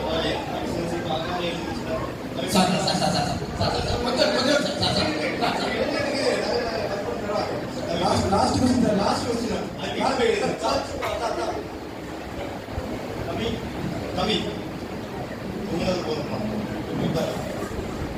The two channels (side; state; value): both; identical; correlation 1.00